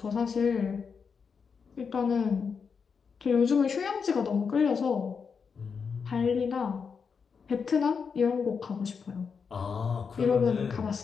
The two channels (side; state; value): right; quieter; 5.9 dB